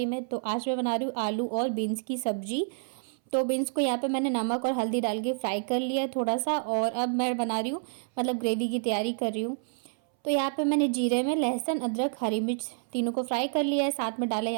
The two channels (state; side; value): silent; left; 59 dB below the other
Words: में। तो आज मैं बना रही हूँ आलू और बीन्स की सब्जी। तो बीन्स को यहाँ पे मैंने नमक और हल्दी डाल के फ्राई कर लिया है थोड़ा सा, और अब मैं बना रही हूँ मतलब ग्रेवी की तैयारी कर रही हूँ। तो यहाँ पे मैंने जीरे में लहसुन, अदरक, हरी मिर्च तीनों को फ्राई कर लिया है। साथ में डाला